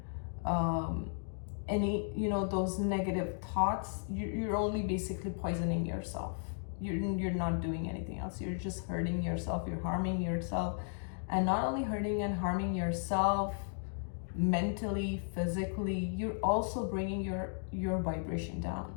any, those negative thoughts, you're only basically poisoning yourself. You're not doing anything else. You're just hurting yourself. You're harming yourself. And not only hurting and harming yourself mentally, physically, you're also bringing your vibration down.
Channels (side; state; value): right; silent; digital silence